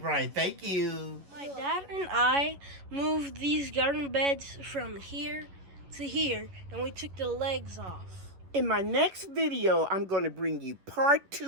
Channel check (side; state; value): left; late; 11 ms